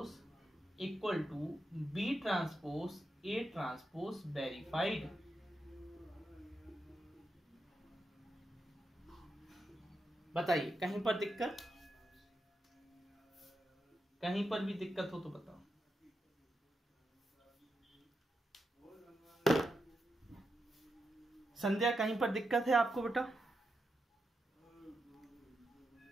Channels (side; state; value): both; normal; correlation 0.86